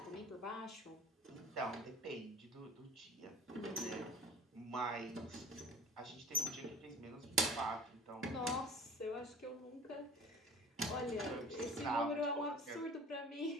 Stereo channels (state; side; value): normal; both; correlation 0.43